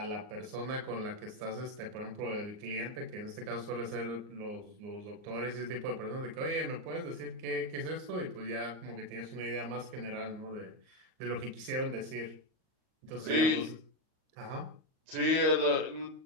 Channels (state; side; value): late; left; 39 ms